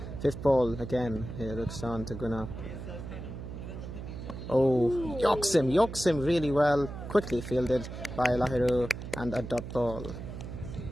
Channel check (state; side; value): noise; right; hum, 9 dB below the sound